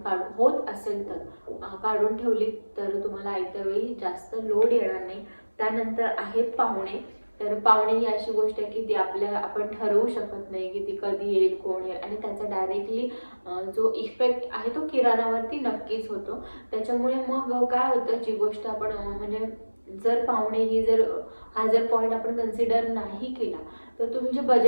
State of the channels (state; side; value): inverted; both; correlation -1.00